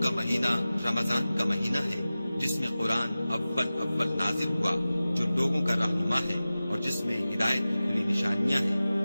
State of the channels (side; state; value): both; inverted; correlation -0.96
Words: کا مہینہ رمضان کا مہینہ ہے جس میں قرآن اول نازل ہوا، جو لوگوں کا رہنما ہے اور جس میں ہدایت کی کھلی نشانیاں